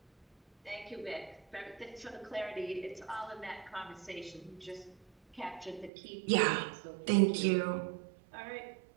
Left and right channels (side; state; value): left; drops out; at 5.9 s